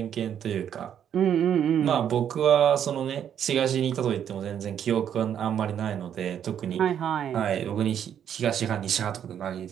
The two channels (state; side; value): quieter; left; 9.2 dB